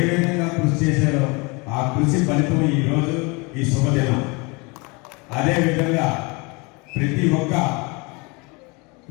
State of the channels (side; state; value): right; quieter; 28.6 dB